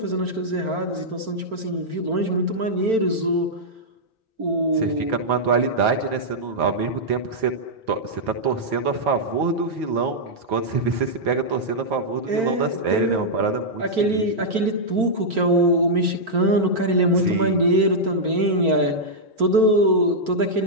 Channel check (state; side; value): late; left; 4.4 ms